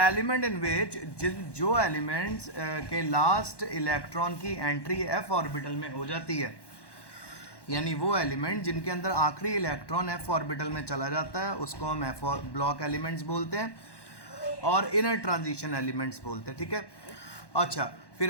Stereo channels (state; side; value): late; right; 1.1 ms